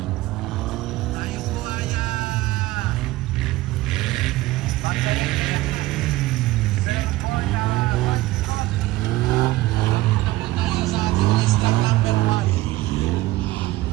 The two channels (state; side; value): quieter; left; 17.8 dB